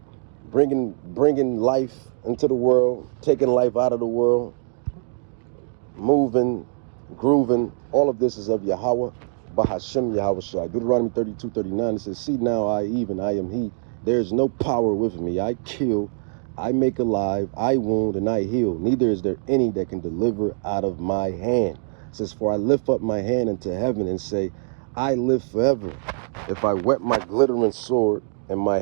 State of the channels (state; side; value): silent; left; digital silence